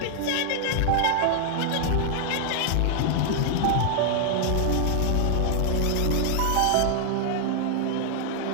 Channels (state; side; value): different; both; correlation 0.00